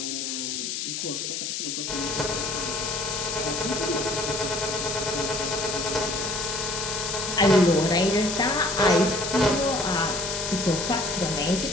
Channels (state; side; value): noise; left; hiss, 3 dB below the sound